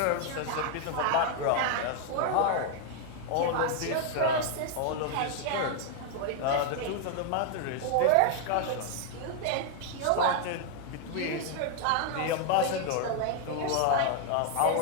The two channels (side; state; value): both; different; correlation 0.00